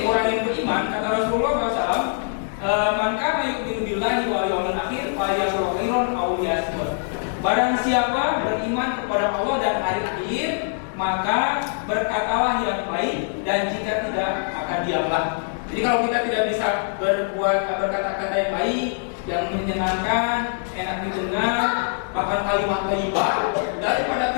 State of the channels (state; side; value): silent; right; digital silence